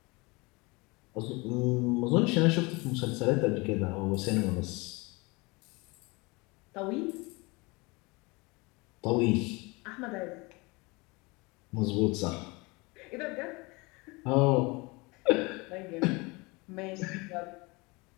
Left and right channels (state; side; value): quieter; right; 25.9 dB